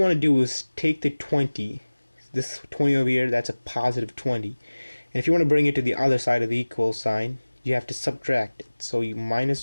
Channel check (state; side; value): inverted; both; correlation -1.00